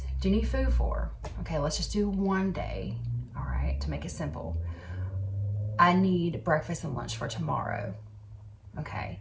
do you need food for? Okay, let's just do 1 day, all right, to make it simple. I need breakfast and lunch for tomorrow, okay?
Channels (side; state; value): both; identical; correlation 1.00